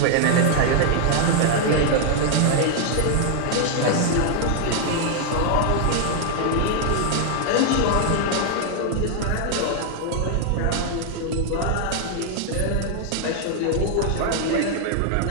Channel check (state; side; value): different; both; correlation 0.00